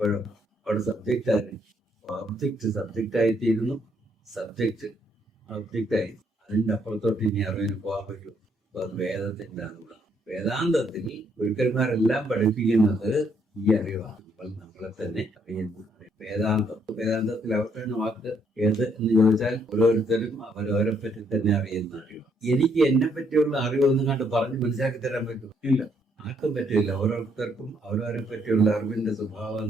അവിടെ സബ്ജക്റ്റ് ആയി, ഓബ്ജക്റ്റ് സബ്ജക്റ്റ് ആയിത്തീരുന്നു, സബ്ജക്റ്റ് ഒബ്ജക്റ്റായി. അതിന്റെ അപ്പുറത്തോട്ട് ഇനി അറിവിന് പോകാൻ പറ്റും. അപ്പൊ അത് വേദത്തിന്റെ അറിവാണ്. വേദാന്തത്തിൽ ഗുരുക്കന്മാരെല്ലാം പഠിപ്പിക്കുന്നത് ഈ അറിവാണ്. നമ്മളെ തന്നെ അറിയുന്നു. വേദാന്തത്തിൽ അവസാന വാക്ക് ഏത് എന്ന് ചോദിച്ചാൽ ഓരോരുത്തരും അവരവരെ പറ്റി തന്നെ അറിയുന്ന അറിവ്. എനിക്ക് എന്നെ പറ്റിയുള്ള അറിവൊന്നും കണ്ട് പറഞ്ഞ് മനസ്സിലാക്കി തരാൻ പറ്റും? ഇല്ല, ആർക്കും പറ്റില്ല. ഓരോരുത്തർക്കും അവരവരെ പറ്റിയുള്ള അറിവിന്റെ സ്വഭാവം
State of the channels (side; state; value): both; normal; correlation 0.71